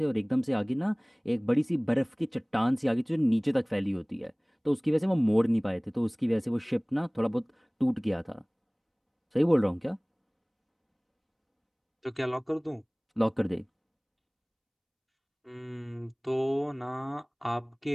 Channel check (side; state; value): both; identical; correlation 1.00